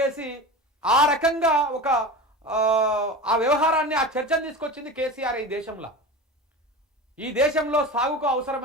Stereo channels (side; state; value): both; normal; correlation 0.30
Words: ఆ రకంగా ఆ వ్యవహారాన్ని, ఆ చర్చను తీసుకొచ్చింది కేసీఆర్ ఈ దేశంలో. ఈ దేశంలో సాగుకు